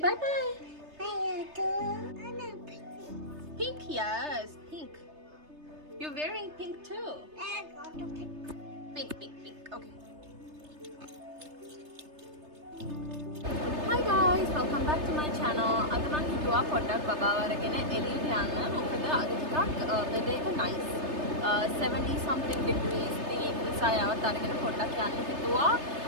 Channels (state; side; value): late; left; 3.3 ms